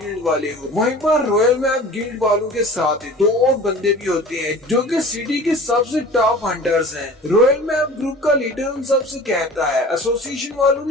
गिल्ड वाले हो। वहीं पर रॉयल मैप गिल्ड वालों के साथ दो और बंदे भी होते हैं जो कि सिटी के सबसे टॉप हंटर्स हैं। रॉयल मैप ग्रुप का लीडर उन सबसे कहता है, एसोसिएशन वालों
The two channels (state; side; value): normal; both; correlation 0.41